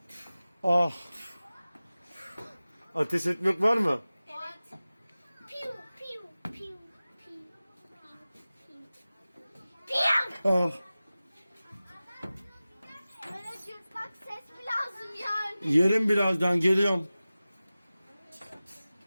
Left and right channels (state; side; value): inverted; both; correlation -0.97